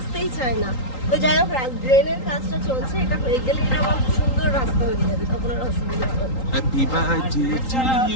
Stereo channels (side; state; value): right; late; 3.8 ms